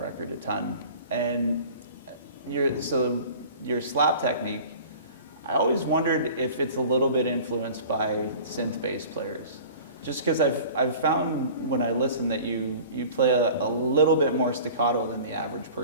record a ton, and your slap technique. I always wondered if it's a little bit influenced by synth bass players, just because I've found when I listen that you play a little bit more staccato than the average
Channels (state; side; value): inverted; both; correlation -0.43